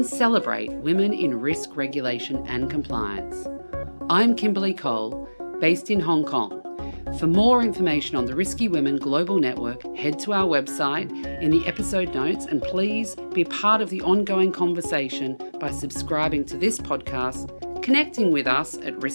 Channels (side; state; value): both; inverted; correlation -1.00